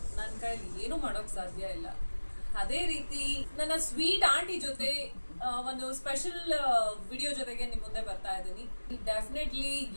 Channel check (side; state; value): both; inverted; correlation -1.00